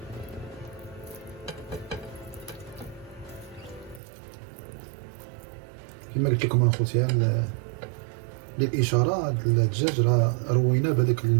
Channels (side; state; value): left; drops out; at 4.0 s